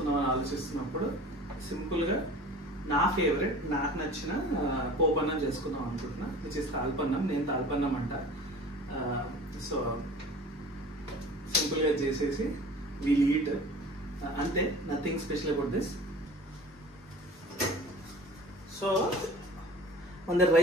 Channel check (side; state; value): both; normal; correlation 0.42